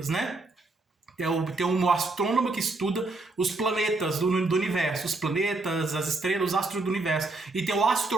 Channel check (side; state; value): left; quieter; 3.2 dB